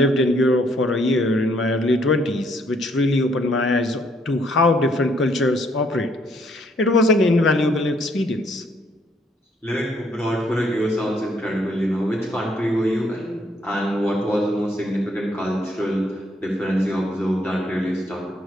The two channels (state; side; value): normal; both; correlation 0.69